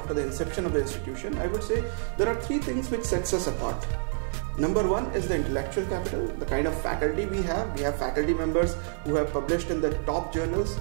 the inception of the institution. I would say there are 3 things which sets us apart. Number 1 is the intellectual capital, the kind of faculty we have. We have faculty members who have published in the top journals.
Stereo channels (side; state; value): left; silent; digital silence